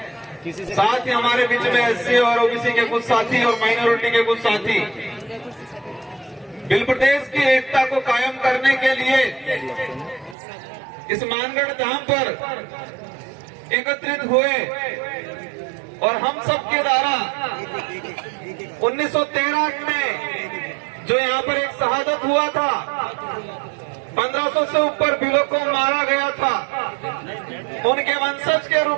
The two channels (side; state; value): left; drops out; at 10.4 s